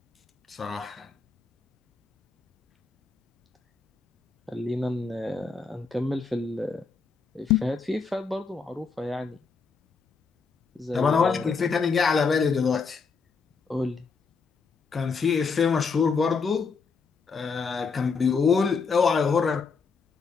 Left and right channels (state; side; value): quieter; right; 5.0 dB